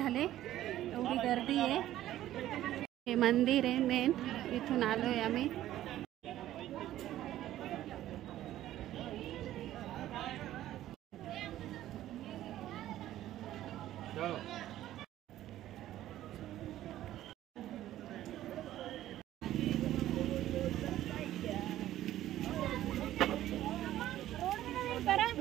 एवढी गर्दी आहे. हे मंदिर आहे मेन. इथून आलोय आम्ही.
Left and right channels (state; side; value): quieter; left; 13.5 dB